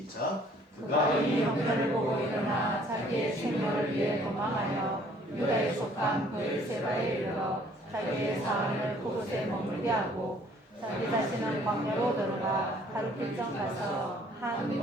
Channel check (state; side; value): normal; both; correlation 0.59